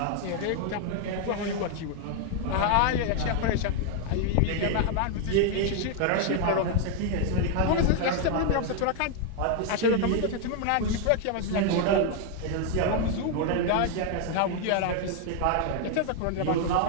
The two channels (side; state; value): both; different; correlation 0.00